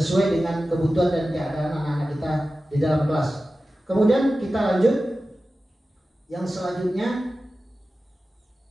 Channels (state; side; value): normal; both; correlation 0.94